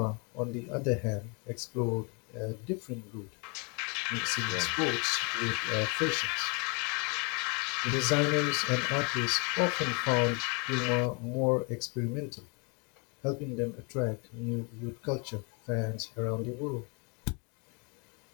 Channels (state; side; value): quieter; right; 33.1 dB